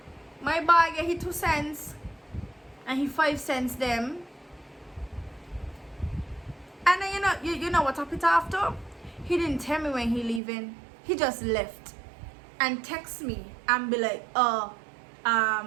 my boy get his 2 cents and he 5 cents them. And then you know what happened after? He didn't tell me when he leaving. He just left and text me and be like,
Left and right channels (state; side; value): drops out; left; at 10.4 s